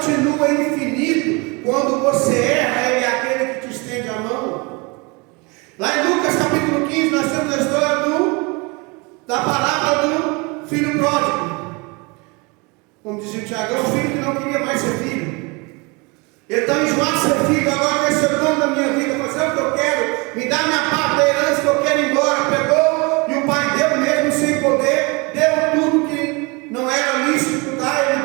infinito. Quando você erra, Ele é aquele que te estende a mão. Lá em Lucas capítulo 15, nós temos a história da parábola do filho pródigo. Como dizia o Tiago, é um filho que não queria mais ser filho. Ele está enjoado de ser filho, agora quer ser dono da minha vida, fazer o que eu quero, me dá minha parte da herança que eu quero ir embora. Pegou e o pai deu mesmo sem poder, deu tudo que não era lícito dar,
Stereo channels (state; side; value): quieter; left; 28.1 dB